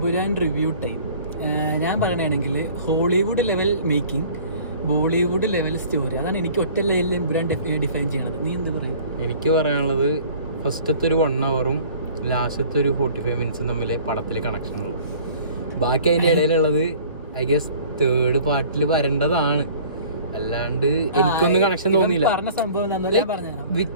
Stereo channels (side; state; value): both; inverted; correlation -0.49